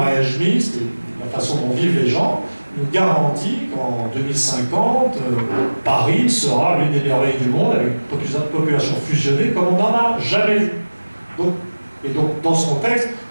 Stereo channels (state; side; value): inverted; both; correlation -1.00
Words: mixte et la façon dont vivent les gens nous garantit qu'en 2050, Paris sera l'une des merveilles du monde avec une population fusionnée comme on n'en a jamais vu. Donc, dans ce contexte,